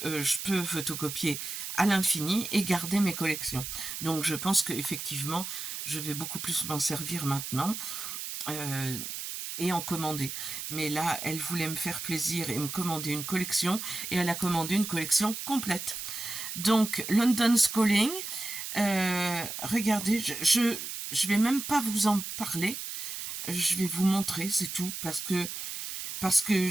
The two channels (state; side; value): noise; right; hiss, 6 dB below the sound